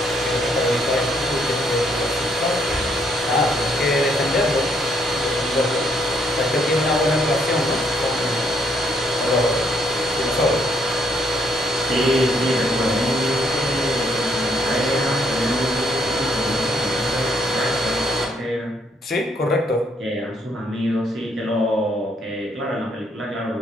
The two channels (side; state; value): both; normal; correlation 0.70